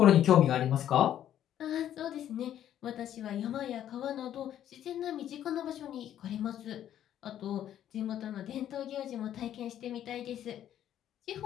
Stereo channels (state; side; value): quieter; right; 11.0 dB